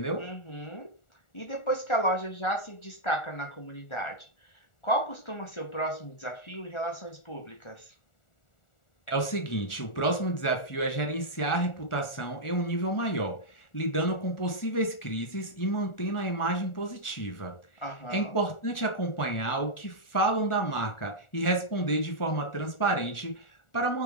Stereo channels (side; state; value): right; late; 1.4 ms